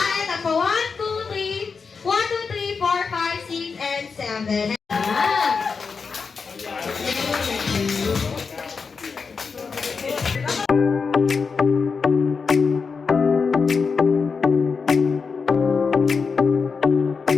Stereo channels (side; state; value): right; quieter; 5.2 dB